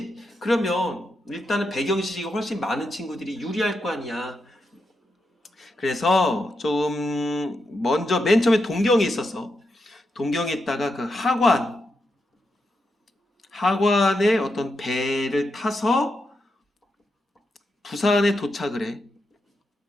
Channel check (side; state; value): both; normal; correlation 0.85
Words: 그러면 일단은 배경 지식이 훨씬 많은 친구들이 유리할 거 아니야. 그래서 좀 먼저 맨 처음에 동경에 있었어. 동경에 있다가 그 하관의 어떤 배를 타서 부산에 도착을 해.